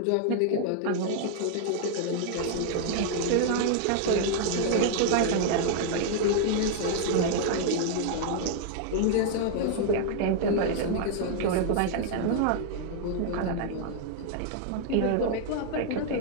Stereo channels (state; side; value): different; both; correlation 0.00